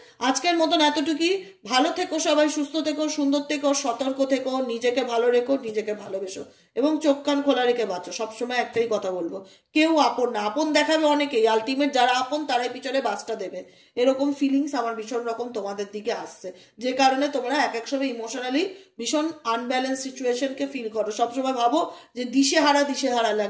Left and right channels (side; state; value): both; identical; correlation 1.00